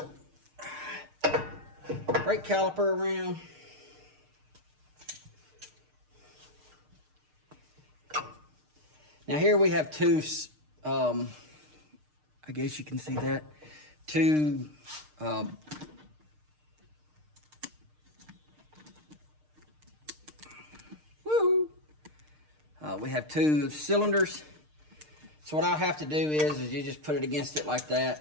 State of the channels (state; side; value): late; left; 6.6 ms